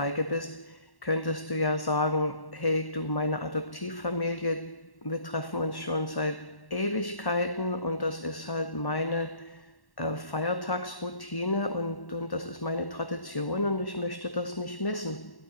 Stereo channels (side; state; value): right; late; 1.1 ms